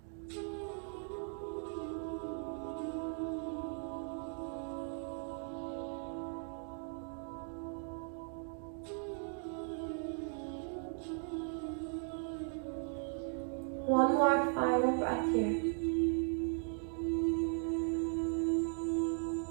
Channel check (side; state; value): left; silent; 52 dB below the other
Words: One more final breath here.